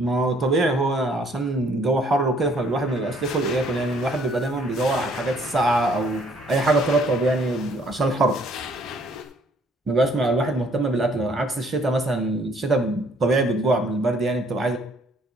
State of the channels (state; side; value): normal; both; correlation 0.62